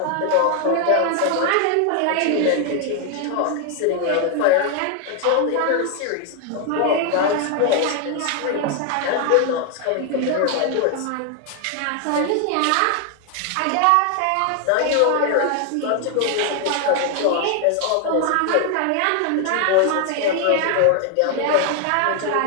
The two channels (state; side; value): different; both; correlation 0.00